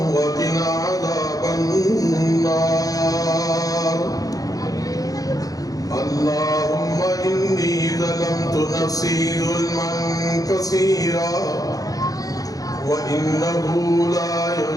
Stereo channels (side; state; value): right; late; 0.17 ms